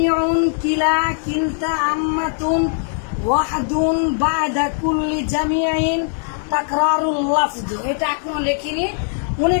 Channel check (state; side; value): silent; right; digital silence